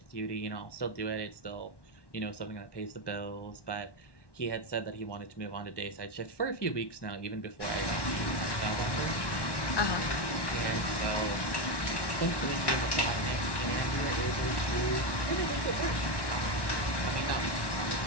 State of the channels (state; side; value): late; right; 1.1 ms